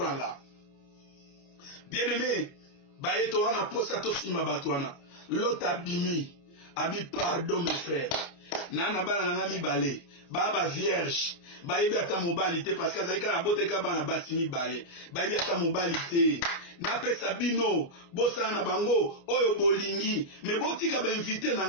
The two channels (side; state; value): right; late; 29 ms